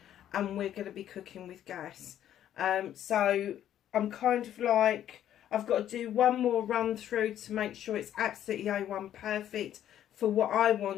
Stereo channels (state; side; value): quieter; right; 11.1 dB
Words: and we're going to be cooking with gas. So I'm kind of like, I've got to do one more run through to make sure it's absolutely A1 perfect for what I